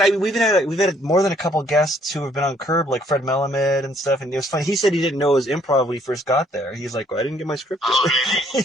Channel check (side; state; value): both; normal; correlation 0.65